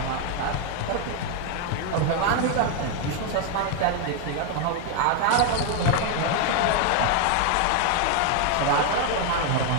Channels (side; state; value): both; different; correlation 0.01